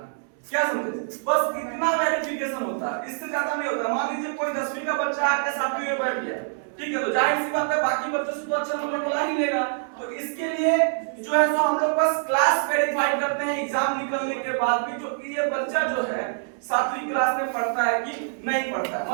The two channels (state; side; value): silent; left; 62 dB below the other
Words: क्या समझे? बस इतना वेरिफिकेशन होता है, इससे ज्यादा नहीं होता। मान लीजिए कोई 10वीं का बच्चा आके 7वीं में बैठ गया, ठीक है, तो जाहिर सी बात है बाकी बच्चों से तो अच्छा नंबर बुला ही लेगा। तो इसके लिए जो है तो हम लोग बस क्लास वेरीफाई करते हैं एग्जाम निकलने के बाद भी, जो कि ये बच्चा जो है 7वीं क्लास में पढ़ता है कि नहीं पढ़ता है।